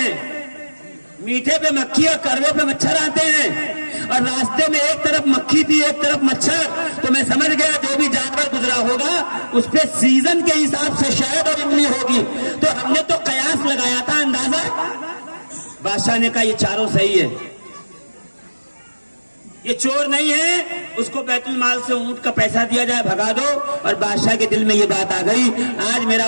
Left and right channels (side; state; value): both; inverted; correlation -1.00